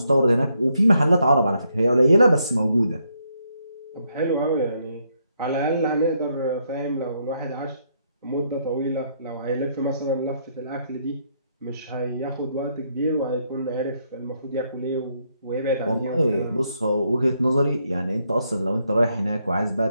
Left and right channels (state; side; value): inverted; both; correlation -0.75